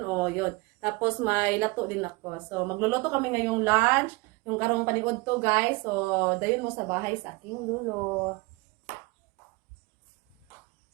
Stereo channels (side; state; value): left; quieter; 25.2 dB